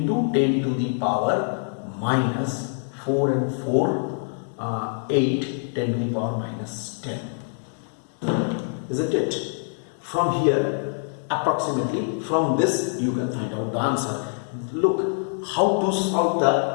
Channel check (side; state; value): right; silent; digital silence